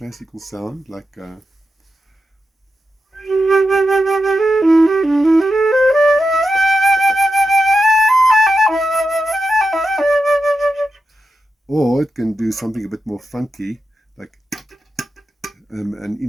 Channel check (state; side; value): normal; both; correlation 0.88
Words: sound, like, or it can do something a bit more funky, like, and